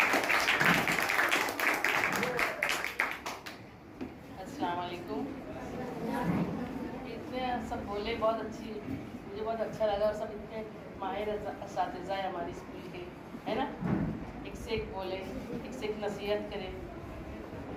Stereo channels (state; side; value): identical; both; correlation 1.00